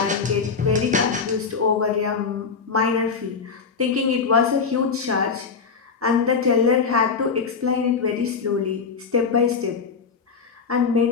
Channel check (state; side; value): quieter; right; 5.4 dB